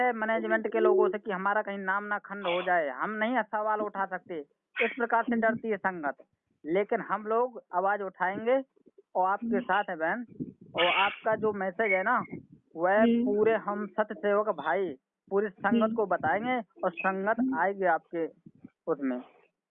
मैनेजमेंट के लोगों से कि हमारा कहीं नाम ना खंड हो जाए, हम नहीं सवाल उठा सकते, इस प्रकार से डरती है संगत। लेकिन हम लोग आवाज उठाएंगे और आपके साथ है बहन। और आपका जो मैसेज है ना, वह पूरे हम सत्य सेवक भाई पूरी संगत को बताएंगे और संगत आएगी आपके उसमें।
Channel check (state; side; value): identical; both; correlation 1.00